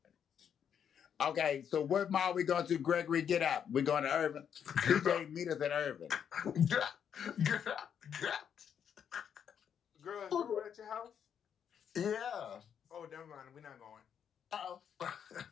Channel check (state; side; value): quieter; right; 8.2 dB